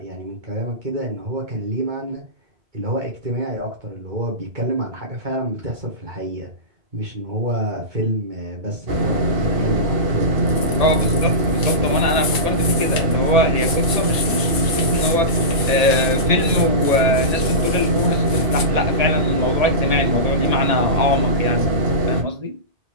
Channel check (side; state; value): left; late; 1.8 ms